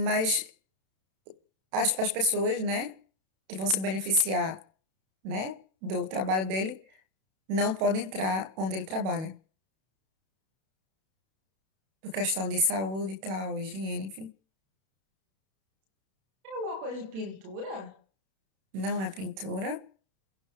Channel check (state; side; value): late; left; 31 ms